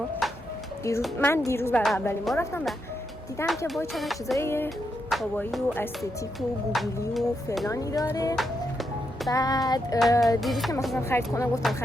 من دیروز برای اولین بار رفتم و دیدم که وای چقدر چیزای کاوایی و استتیک و گوگلی و فلانی داره. بعد دیروز که مثلا خرید کنم گفتم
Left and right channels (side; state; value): both; normal; correlation 0.82